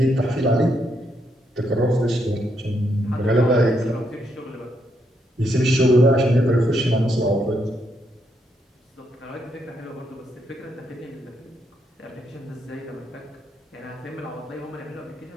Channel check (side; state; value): both; normal; correlation 0.77